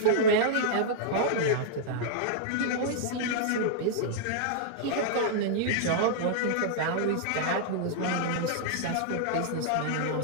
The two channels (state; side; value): different; both; correlation -0.02